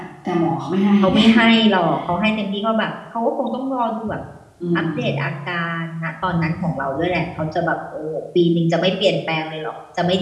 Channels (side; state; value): both; identical; correlation 1.00